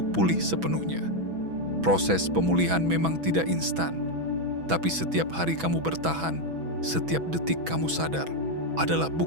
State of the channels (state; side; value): late; left; 6.1 ms